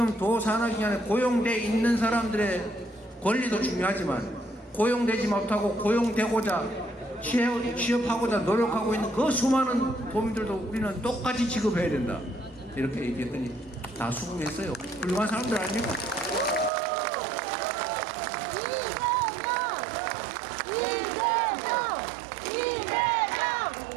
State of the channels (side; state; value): left; drops out; at 16.7 s